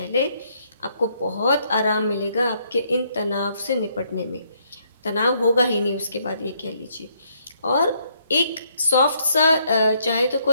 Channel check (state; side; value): inverted; both; correlation -0.71